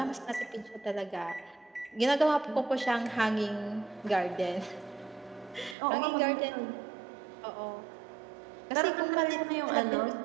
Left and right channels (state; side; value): drops out; left; at 5.8 s